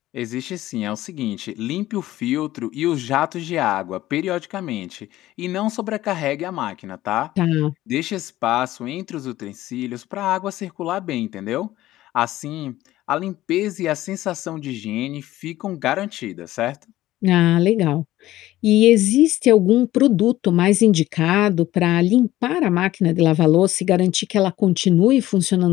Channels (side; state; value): right; quieter; 15.3 dB